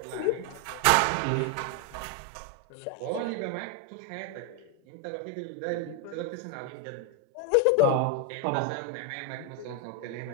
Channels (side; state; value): both; different; correlation 0.01